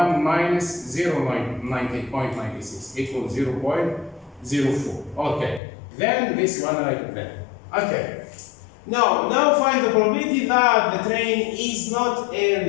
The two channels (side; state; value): right; drops out; at 5.6 s